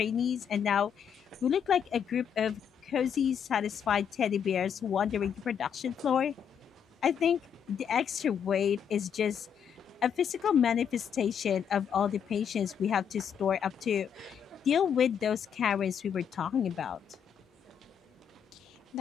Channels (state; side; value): quieter; right; 7.9 dB